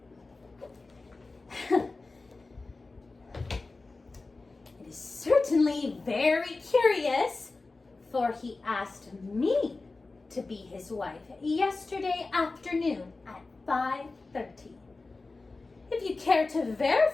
is certainly very curious, for he asked me to be his wife yesterday afternoon at 5:30. If you care to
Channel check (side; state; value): right; quieter; 3.6 dB